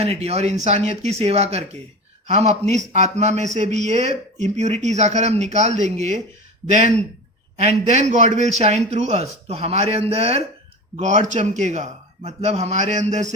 और इंसानियत की सेवा करके हम अपनी आत्मा में से भी ये इम्प्योरिटीज आकर हम निकाल देंगे. Then God will shine through us. तो हमारे अंदर गॉड चमकेगा, मतलब हमारे अंदर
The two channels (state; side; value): normal; both; correlation 0.30